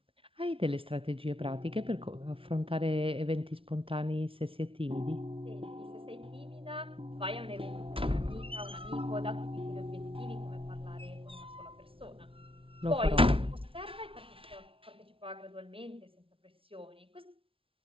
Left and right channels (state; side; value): late; left; 0.26 ms